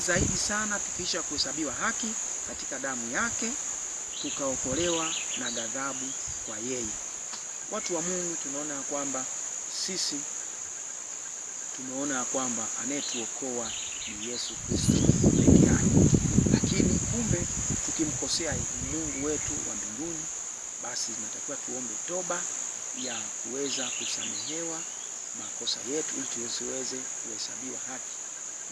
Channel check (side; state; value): both; identical; correlation 1.00